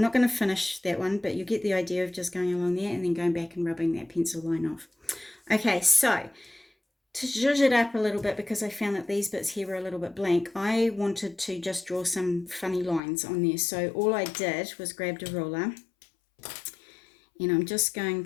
going to finish that one, but you get the idea of just going along there and then going back and rubbing that pencil line off. Okay, so to zhuzh it up a little bit, because I found that these bits here were a little bit blank, I wanted to just draw some funny lines on there. So all I did was grabbed a ruler, and I'm just going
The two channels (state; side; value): drops out; right; at 13.0 s